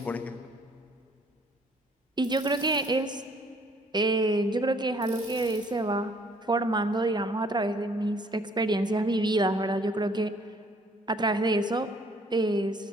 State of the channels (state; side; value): normal; both; correlation 0.60